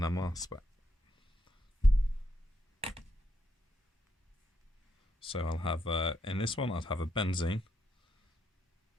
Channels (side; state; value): both; normal; correlation 0.79